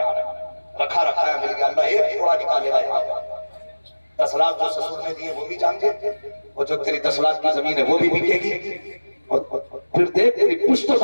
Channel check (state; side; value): inverted; both; correlation -1.00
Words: रखा है मिल गया, अल्लाह एक थोड़ा निकालेगा यहाँ। 10 लाख जो ससुर ने दिए वो भी जाएंगे, और जो तेरी 10 लाख की जमीन है वो भी बिकेगी। और फिर देख तेरी पुश्तों